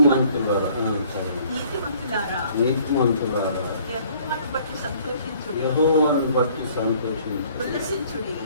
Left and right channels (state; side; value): inverted; both; correlation -0.58